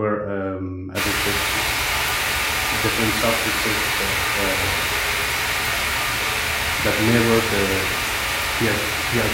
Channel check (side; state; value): both; identical; correlation 1.00